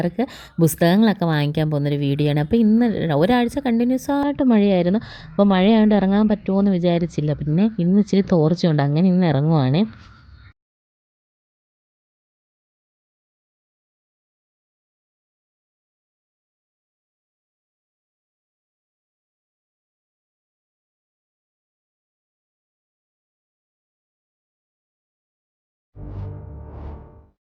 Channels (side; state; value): both; identical; correlation 1.00